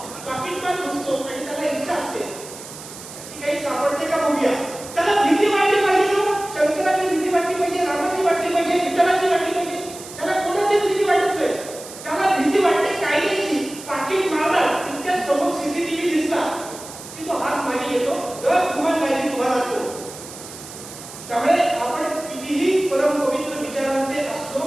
पाकिटमान घुसतो आणि त्याला इच्छा असते की काही सापडते का बघूया. त्याला भीती वाटली पाहिजे ना, शंकराची भीती वाटली पाहिजे, रामाची वाटली पाहिजे, विठ्ठलाची वाटली पाहिजे. त्याला कोणाचीच भीती वाटत नाही. त्याला भीती वाटते कायद्याची. पाकिट मारणार तितक्यात समोर सीसीटीव्ही दिसला की तो हात मागे येतो, गुमान मागे उभा राहतो. त्यामुळे आपण कितीही परमपवित्र विचारांचे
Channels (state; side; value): noise; right; hiss, 14 dB below the sound